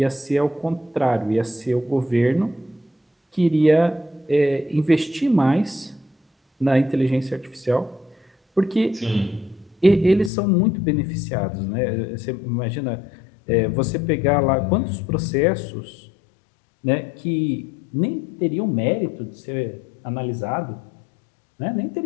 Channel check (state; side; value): drops out; right; at 10.3 s